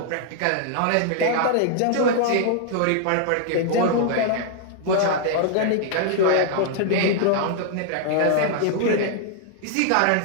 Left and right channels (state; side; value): different; both; correlation 0.00